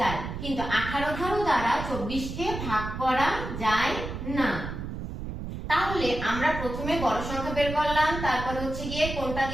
কিন্তু 18 দ্বারা 24 কে ভাগ করা যায় না। তাহলে আমরা প্রথমে বড় সংখ্যা বের করলাম, তারপর হচ্ছে গিয়ে কোনটা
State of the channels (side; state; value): right; noise; rumble, 7 dB below the sound